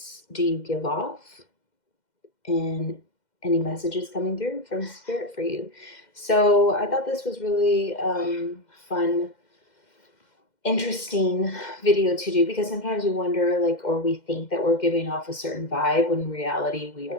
do you give off and any messages coming through from Spirit for you. So I thought this was really fun, interesting video to do because sometimes we wonder or we think that we're giving off a certain vibe when in reality we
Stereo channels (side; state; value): right; late; 2.1 ms